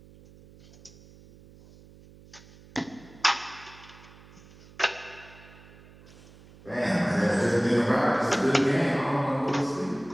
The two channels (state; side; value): noise; right; hum, 23 dB below the sound